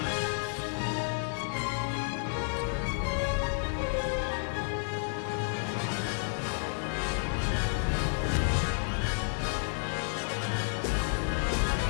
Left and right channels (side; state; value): right; silent; digital silence